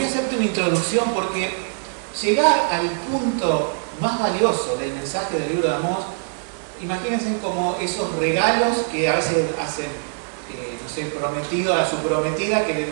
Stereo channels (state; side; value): silent; left; digital silence